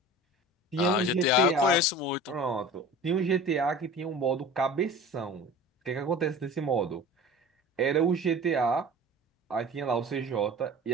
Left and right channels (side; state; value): both; normal; correlation 0.39